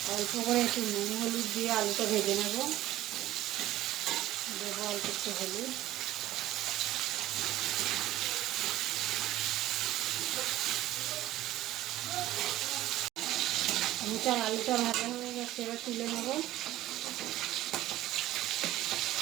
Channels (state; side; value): quieter; left; 15.0 dB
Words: অল্প করে একটু নুন হলুদ দিয়ে আলুটা ভেজে নেব। দেবো অল্প একটু হলুদ। মোটার আলুটা ভাজা হয়ে গেছে, এবার তুলে নেব।